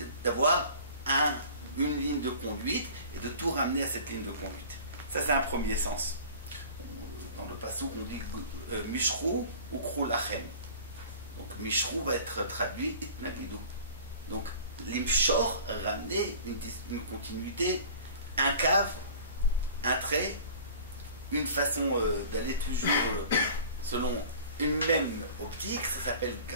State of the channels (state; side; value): inverted; both; correlation -0.44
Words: d'avoir une ligne de conduite et de tout ramener à cette ligne de conduite. Ça, c'est un premier sens. Dans le passouk, on dit Mishrou ou Krou Lachem. Donc, Mishrou va être traduit Itnaklidou. Donc, l'imshor, ramener une continuité, un cave, un trait, une façon d'aller toujours selon une même optique, ça s'appelle